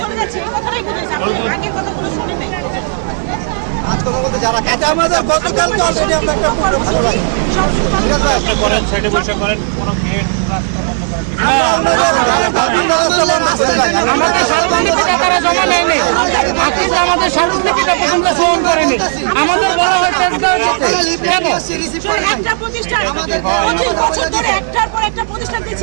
যাচ্ছি। এই কথাটাই বুঝেছি, আগের কথাগুলো শুনে নাই। এটা আমাদের গতকালকে অলরেডি আমরা একটা প্রোগ্রাম করেছি। আপনি করেন, সাইডে বসে করেন, কোনো গেট রাস্তা বন্ধ করেন। আমরা রাস্তা বন্ধ করে আমাদের সর্বনিকটে তারা জমা নেয়নি, আমাদের সর্বনিকটে আমরা ফোন করিনি। আমাদের বলা হয়েছে একটা প্রতিষ্ঠান 25 বছর ধরে একটার পর একটা প্রতিষ্ঠান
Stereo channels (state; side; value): silent; left; digital silence